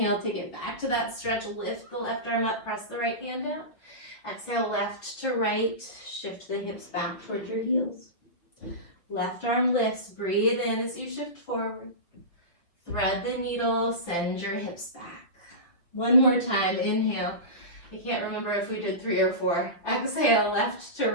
take it back to that stretch. Lift the left arm up, press the right hand down. Exhale, left to right. Shift the hips back towards your heels. Left arm lifts, breathe in as you shift forward. Thread the needle, send your hips back. One more time, inhale. I can't remember if we did 3 or 4. Exhale, left to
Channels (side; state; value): right; late; 6.1 ms